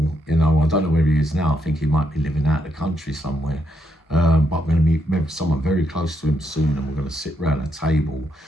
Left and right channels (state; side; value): normal; both; correlation 0.78